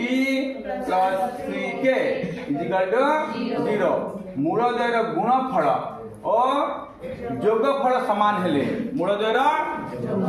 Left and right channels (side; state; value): both; identical; correlation 1.00